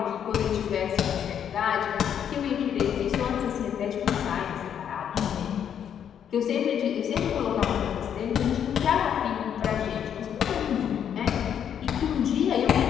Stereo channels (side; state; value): right; quieter; 8.8 dB